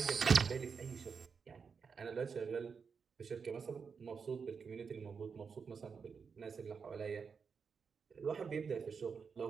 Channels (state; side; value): quieter; left; 5.8 dB